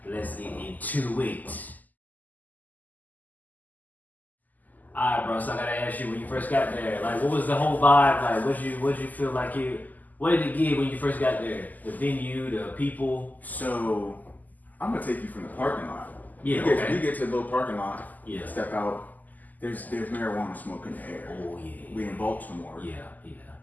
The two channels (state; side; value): late; right; 0.082 ms